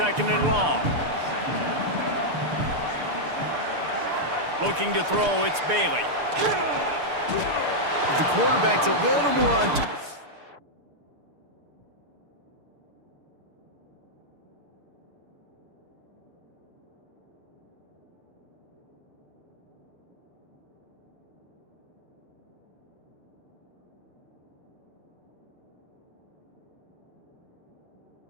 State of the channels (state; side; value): late; left; 6.8 ms